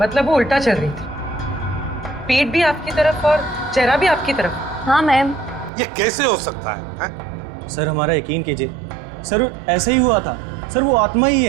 मतलब वो उल्टा चल रही थी, पेट भी आपकी तरफ और चेहरा भी आपकी तरफ। हाँ मैम। ये कैसे हो सकता है? सर हमारा यकीन कीजिए, सर ऐसा ही हुआ था। सर वो आत्मा ही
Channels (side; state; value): left; drops out; at 5.7 s